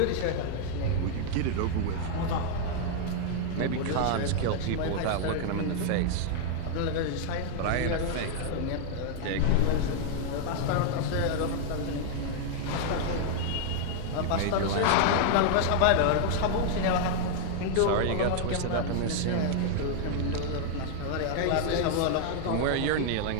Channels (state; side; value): different; both; correlation 0.00